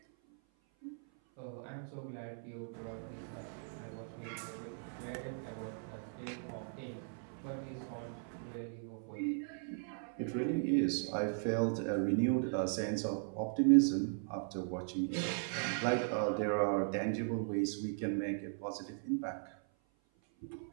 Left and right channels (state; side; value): silent; left; 52 dB below the other